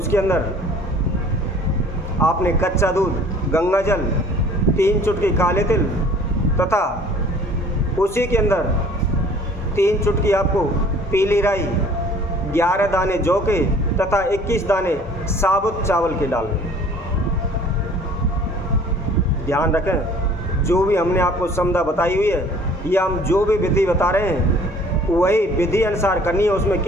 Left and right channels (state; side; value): normal; both; correlation 0.52